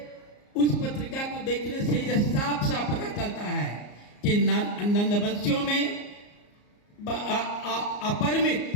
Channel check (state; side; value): late; right; 34 ms